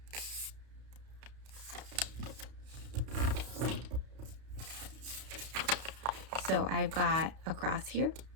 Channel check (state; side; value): late; left; 32 ms